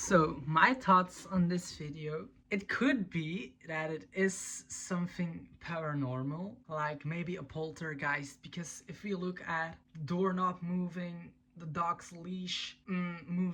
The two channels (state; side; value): identical; both; correlation 1.00